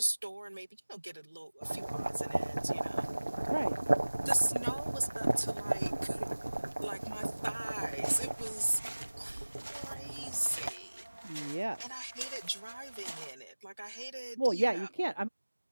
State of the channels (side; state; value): both; inverted; correlation -1.00